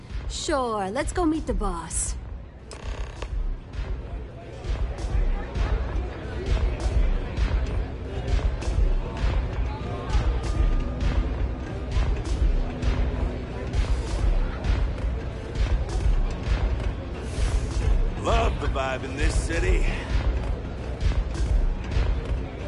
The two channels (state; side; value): identical; both; correlation 1.00